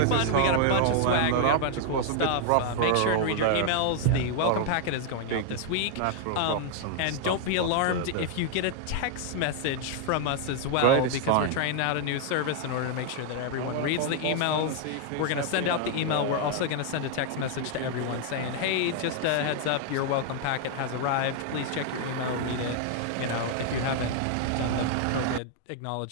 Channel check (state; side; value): different; both; correlation 0.00